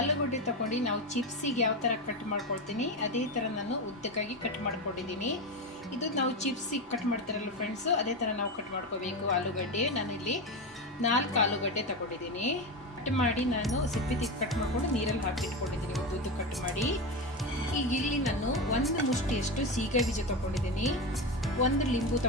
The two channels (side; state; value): both; normal; correlation 0.17